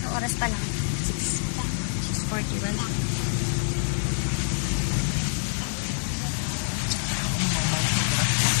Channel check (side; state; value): right; silent; digital silence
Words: Ang oras pa lang. 6:41.